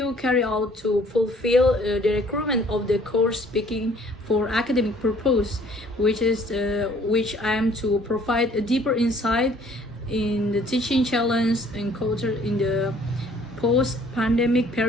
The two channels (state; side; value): normal; both; correlation 0.57